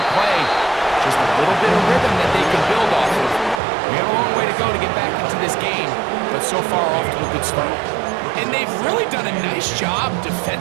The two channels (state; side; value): drops out; left; at 3.6 s